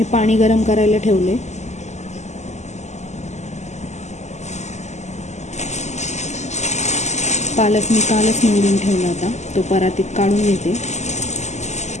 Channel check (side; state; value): right; late; 0.33 ms